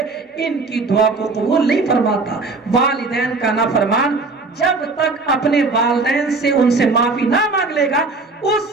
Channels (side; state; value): left; quieter; 3.7 dB